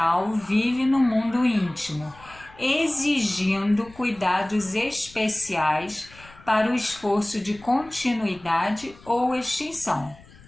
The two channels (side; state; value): left; noise; rumble, 23 dB below the sound